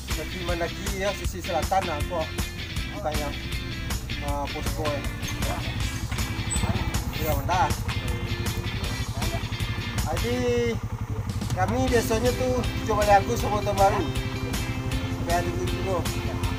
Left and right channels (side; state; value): both; identical; correlation 1.00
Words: seperti Mendaki ya sisi selatan aku kayak posko ya mantap. Jadi kami biasanya tuh coba lagu sama tahun baru. Kaya dulu.